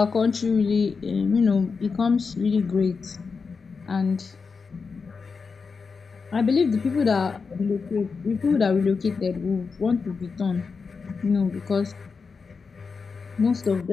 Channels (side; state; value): right; quieter; 5.0 dB